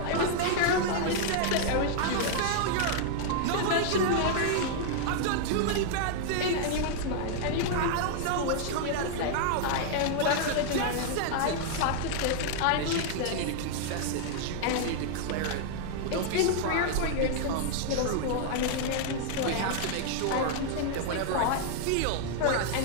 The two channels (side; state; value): both; different; correlation 0.00